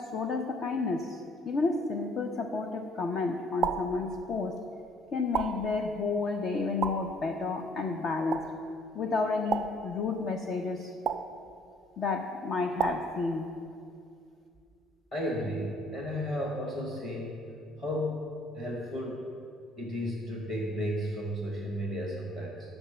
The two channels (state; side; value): normal; both; correlation 0.60